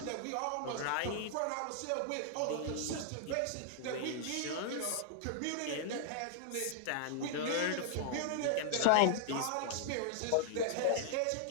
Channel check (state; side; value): different; both; correlation -0.01